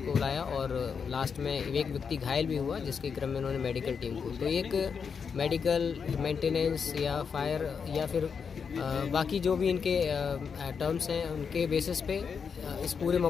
बुलाया और लास्ट में एक व्यक्ति घायल भी हुआ, जिसके क्रम में उन्होंने मेडिकल टीम को, तो एक मेडिकल मेंटेनेंस या फायर या फिर बाकी जो भी इनके टर्म्स हैं उनके बेसिस पे इस पूरे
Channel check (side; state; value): right; quieter; 6.2 dB